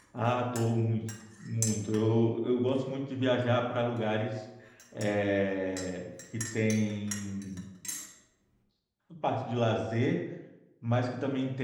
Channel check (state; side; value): identical; both; correlation 1.00